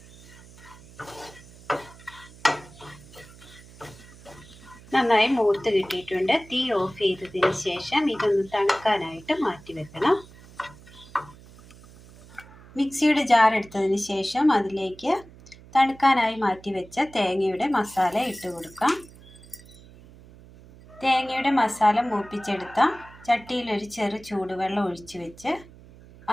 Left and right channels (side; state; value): right; noise; hum, 21 dB below the sound